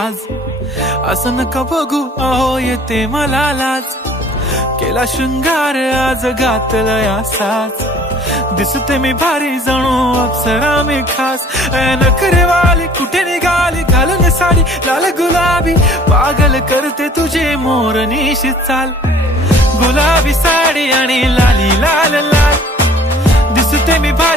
असं नका बघू अहो येते मला लाज. केला शृंगार आज घातला या साज, दिसते मी भारी जणू अप्सरा मी खास. नखरेवाली कुठे निघाली घालून साडी लाल गुलाबी, पागल करते तुझे मोरनीशी चाल. गुलाबी साडी आणि लाली लाल लाल, दिसते मी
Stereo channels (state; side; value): normal; both; correlation 0.52